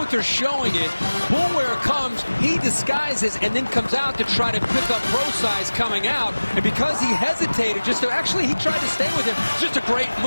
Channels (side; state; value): both; inverted; correlation -1.00